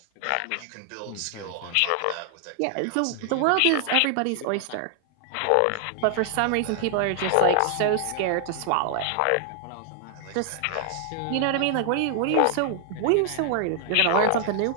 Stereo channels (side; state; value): both; different; correlation 0.00